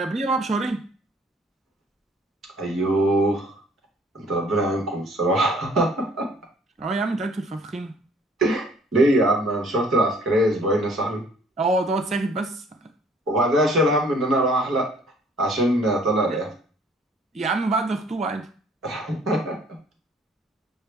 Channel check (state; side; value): normal; both; correlation 0.58